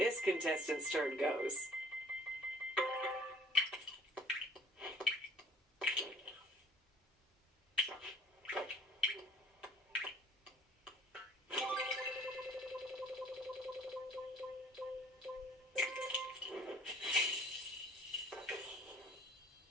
contestant's turn goes.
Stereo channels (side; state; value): both; normal; correlation 0.53